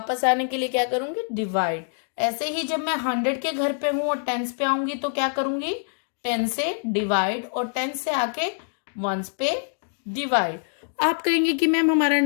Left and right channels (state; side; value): silent; right; 62 dB below the other